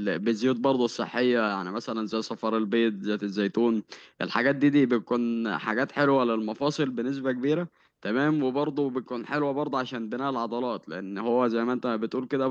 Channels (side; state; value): both; identical; correlation 1.00